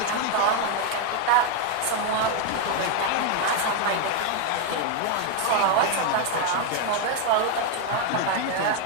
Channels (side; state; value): both; different; correlation 0.01